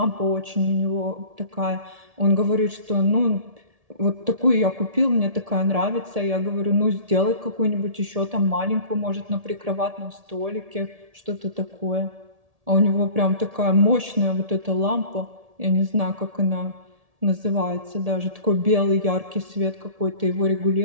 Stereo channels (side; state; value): left; late; 1.7 ms